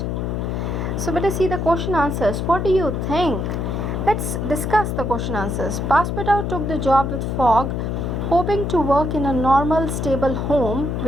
So let us see the question answers. What do you think? Let's discuss the question answers. Passepartout took the job with Fogg, hoping to work in a normal, stable home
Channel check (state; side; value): noise; left; hum, 1 dB below the sound